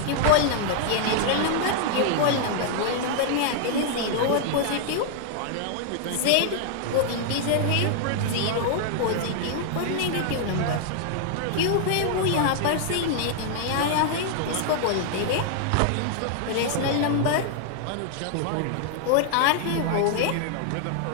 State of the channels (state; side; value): different; both; correlation 0.00